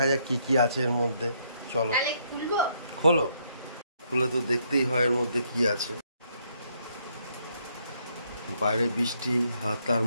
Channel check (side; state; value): both; inverted; correlation -0.72